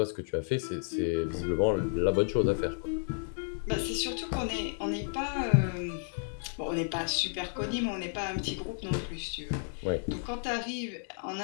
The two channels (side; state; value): right; silent; digital silence